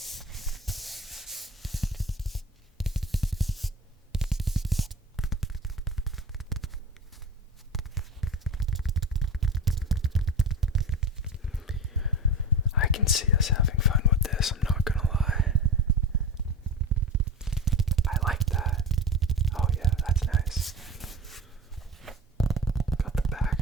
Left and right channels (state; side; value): normal; both; correlation 0.30